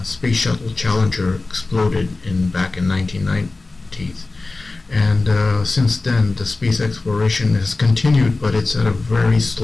Space Shuttle Challenger exploded back in 1990s. And since then, the space exploration has continued, but it's at a very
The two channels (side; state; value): right; quieter; 3.4 dB